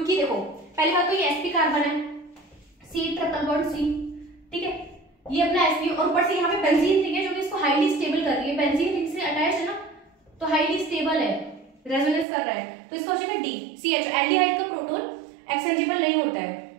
देखो पहली बात तो ये sp कार्बन है, C ट्रिपल बॉन्ड C, ठीक है, ये अपना sp और ऊपर से यहाँ पे बेंजीन रिंग है जो कि इसको हाईली स्टेबल कर रही है, बेंजीन रिंग से अटैच है ना तो हाईली स्टेबल है, रेजोनेंस कर रहा है, तो इसका हो जाएगा D CH। एल्डिहाइड का प्रोटॉन एक्सचेंजेबल नहीं होता है,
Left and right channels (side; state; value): left; drops out; at 12.2 s